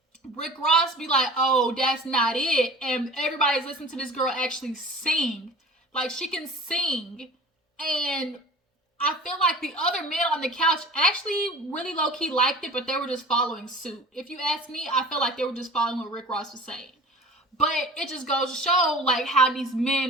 Rick Ross be like, oh, that's not it, and everybody's listening to this girl actually sing. Like, she can sing. And I feel like the other men on the couch actually really low-key liked it, but they were just following suit. If you ask me, I feel like they were just following what Rick Ross was saying. But it just goes to show, like, how these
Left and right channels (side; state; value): both; normal; correlation 0.40